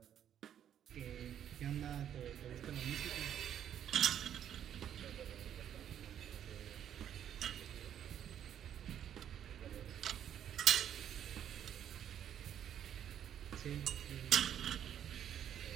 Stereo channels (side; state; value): left; quieter; 9.9 dB